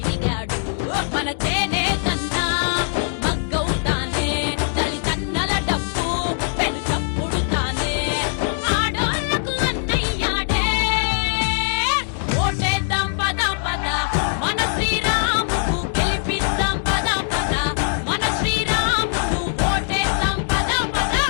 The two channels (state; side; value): silent; right; digital silence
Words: మన చేనే కన్నా మగ్గవుతానే తల్లిదండ్రుల డబ్బు పెను చప్పుడు తానే ఆడోళ్లకు అన్నయ్యాడే ఓటేద్దాం పద పద మన శ్రీరాముకు గెలిపిద్దాం పద పద మన శ్రీరాముకు ఓటేద్దాం పద పద